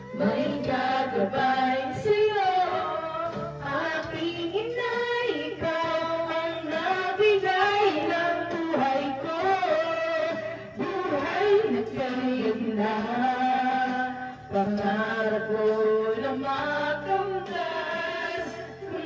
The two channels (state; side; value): identical; both; correlation 1.00